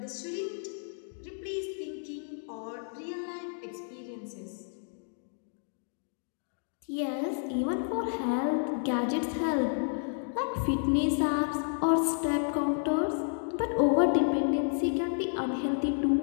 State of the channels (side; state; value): right; silent; digital silence